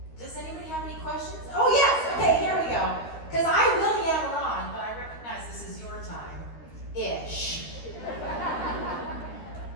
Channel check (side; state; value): right; late; 13 ms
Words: Does anybody have any questions? Oh yes, okay, here we go. Because I will yammer on, but I recognize this is your time. Ish.